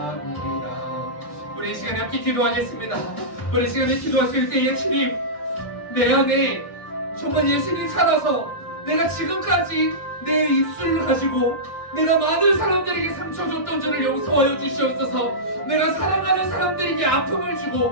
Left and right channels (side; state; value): right; late; 1.9 ms